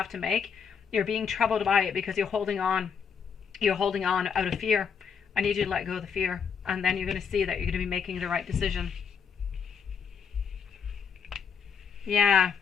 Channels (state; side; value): quieter; right; 6.6 dB